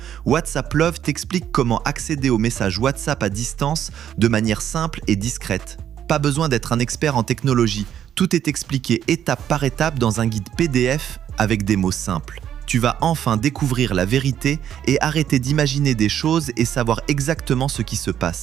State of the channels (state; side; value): quieter; left; 10.0 dB